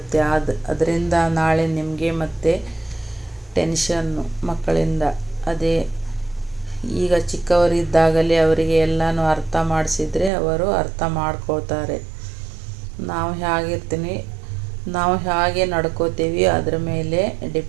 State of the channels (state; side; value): drops out; left; at 10.3 s